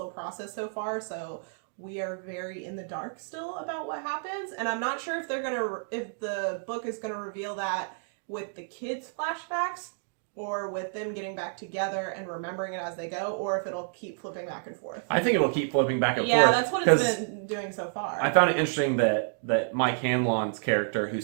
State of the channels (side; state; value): left; silent; digital silence